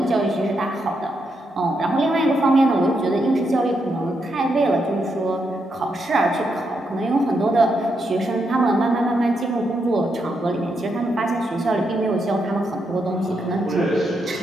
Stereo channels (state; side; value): normal; both; correlation 0.81